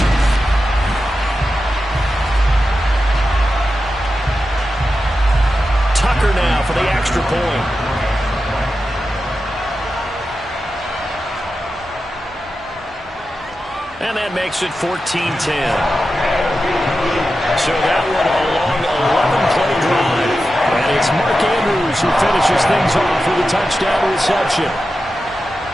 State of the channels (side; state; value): both; normal; correlation 0.91